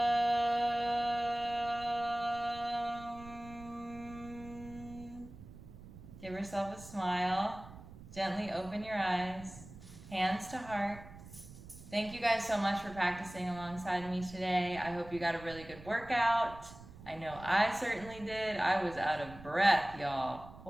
Give yourself a smile. Gently open your eyes. Hands to heart. Thank you guys so much for practicing alongside me today. I hope you got a really good workout. I know I certainly did. I was out of breath, y'all.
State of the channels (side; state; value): right; noise; rumble, 16 dB below the sound